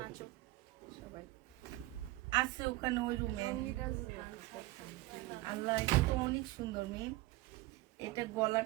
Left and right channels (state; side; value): quieter; left; 18.8 dB